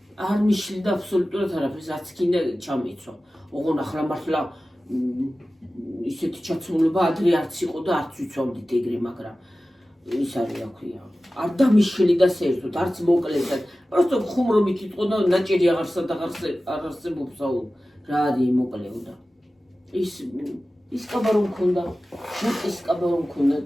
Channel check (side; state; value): both; normal; correlation 0.96